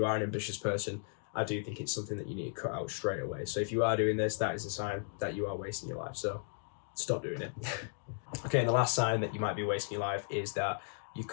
are an ambitious person, I do think it's something that you need to cut out straight away. So if you are doing this, that is a sign that you are wasting your life. So stop doing it. Okay, and the last sign that you might be wasting your life is that you're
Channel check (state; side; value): silent; right; digital silence